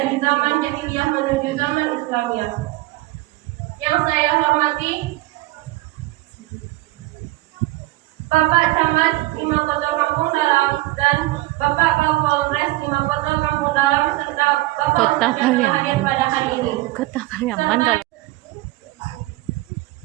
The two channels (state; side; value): quieter; left; 19.1 dB